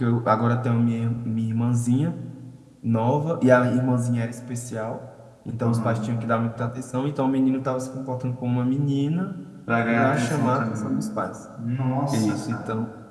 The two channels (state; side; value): identical; both; correlation 1.00